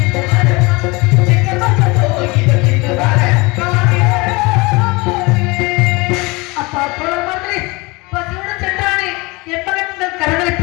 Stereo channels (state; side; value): quieter; right; 25.1 dB